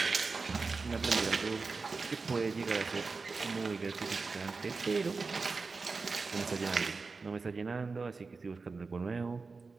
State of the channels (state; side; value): quieter; left; 4.3 dB